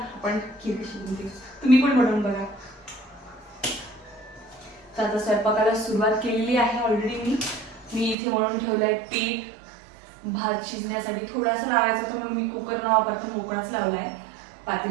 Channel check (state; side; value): drops out; left; at 8.2 s